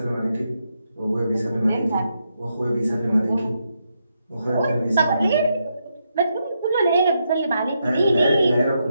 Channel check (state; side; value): inverted; both; correlation -0.82